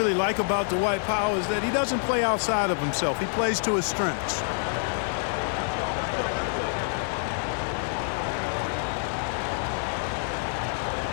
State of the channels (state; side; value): silent; right; digital silence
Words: like about Dwight Powell is that he doesn't play outside of himself. He plays to his strengths.